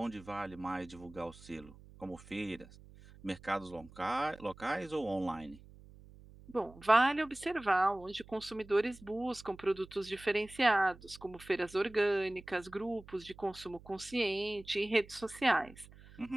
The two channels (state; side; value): noise; right; hum, 20 dB below the sound